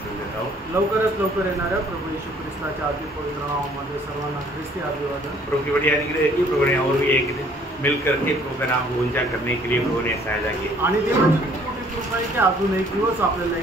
सुन देता हूँ। लवकरच लवकर येणाऱ्या प्रभू येशू ख्रिस्ताच्या अति पवित्र नावामध्ये सर्वांना ख्रिस्ती अभिवादन। प्रभु की बड़ी अनुग्रह है कि प्रभु ने और भी एक दिन मिलकर के प्रभु का नाम को ऊंचा करने के लिए प्रभु ने सहायता की आणि देवाची खूप मोठी कृपा आहे की अजून एक दिवस आपल्याला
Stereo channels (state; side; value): normal; both; correlation 0.58